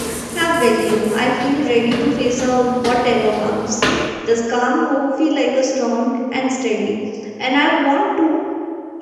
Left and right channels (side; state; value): both; identical; correlation 1.00